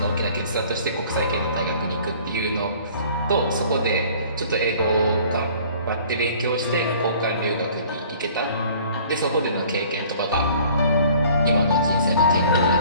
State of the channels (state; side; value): inverted; both; correlation -0.52